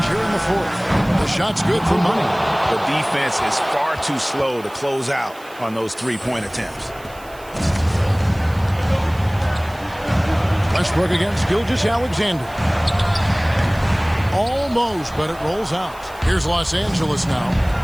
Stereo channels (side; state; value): right; noise; hiss, 23 dB below the sound